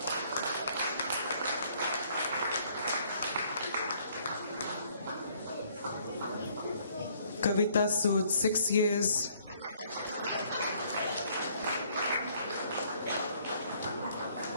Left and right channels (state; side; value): inverted; both; correlation -0.63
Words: Kavita Sood, 6 years.